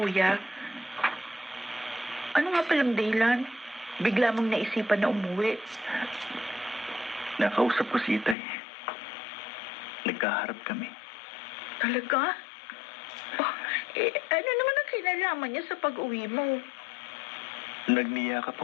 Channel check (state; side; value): drops out; right; at 8.3 s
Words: Ano nga palang dahilan? Bigla mong naisipan na umuwi. Nakausap ko si Itay. Nagkaharap kami. Talaga? Oh, ano naman ang kinalaman niya sa pag-uwi mo? Nagniyakap